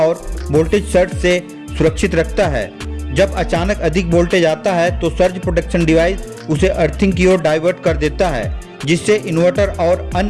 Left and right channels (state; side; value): identical; both; correlation 1.00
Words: वोल्टेज सर्ज से सुरक्षित रखता है। जब अचानक अधिक वोल्टेज आता है तो सर्ज प्रोटेक्शन डिवाइस उसे अर्थिंग की ओर डाइवर्ट कर देता है, जिससे इन्वर्टर और